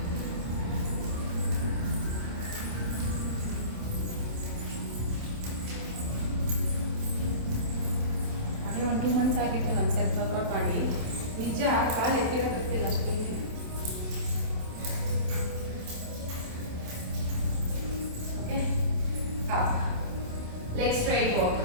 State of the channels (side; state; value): left; late; 27 ms